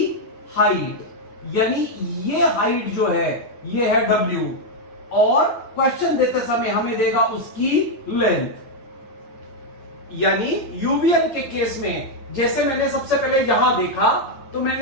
हाइट, यानी ये हाइट जो है ये है W, और क्वेश्चन देते समय हमें देगा उसकी लेंथ। यानी यूवीएल के केस में जैसे मैंने सबसे पहले यहां देखा तो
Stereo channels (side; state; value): right; late; 8.9 ms